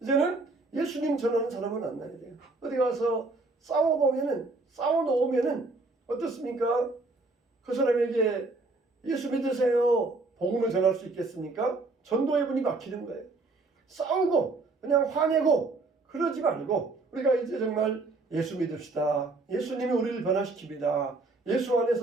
이제는 예수님 전하는 사람을 만나야 돼요. 어디 가서 싸워놓으면은 어떻습니까? 그 사람에게 예수 믿으세요. 복음을 전할 수 있겠습니까? 전도의 분이 막히는 거예요. 싸우고 그냥 화내고 그러지 말고 우리가 이제 정말 예수 믿읍시다. 예수님이 우리를 변화시킵니다. 예수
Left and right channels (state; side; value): quieter; left; 3.4 dB